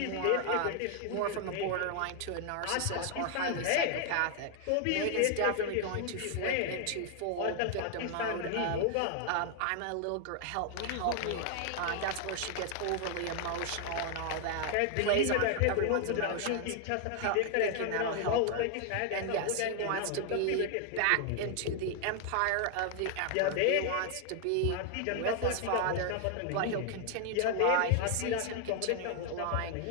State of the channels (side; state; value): both; different; correlation 0.00